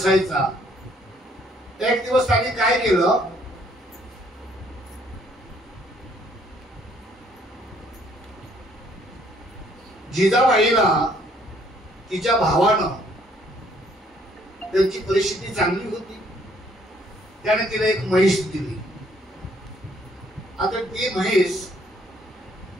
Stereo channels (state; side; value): normal; both; correlation 0.65